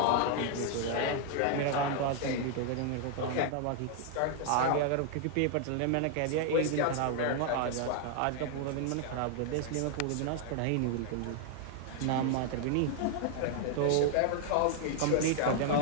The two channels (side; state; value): both; different; correlation 0.00